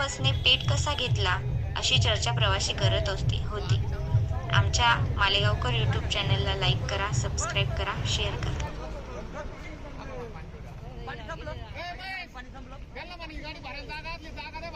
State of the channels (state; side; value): identical; both; correlation 1.00